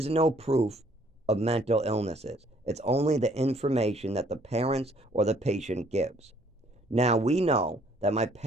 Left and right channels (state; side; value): normal; both; correlation 0.62